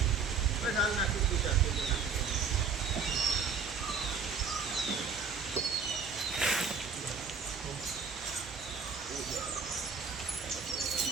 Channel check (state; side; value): quieter; left; 5.4 dB